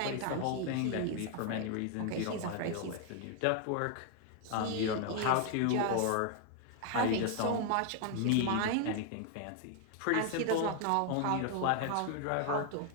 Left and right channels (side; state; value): both; different; correlation 0.00